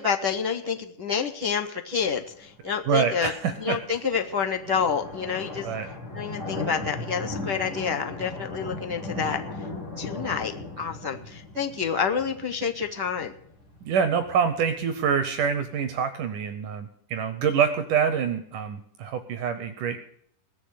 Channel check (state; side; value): late; left; 10 ms